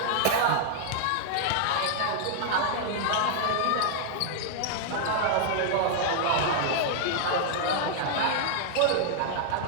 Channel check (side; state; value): both; different; correlation -0.01